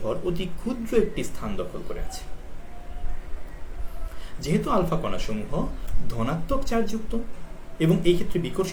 অতি ক্ষুদ্র একটি স্থান দখল করে আছে। যেহেতু আলফা কণাসমূহ ধনাত্মক চার্জযুক্ত এবং এই ক্ষেত্রে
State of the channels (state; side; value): identical; both; correlation 1.00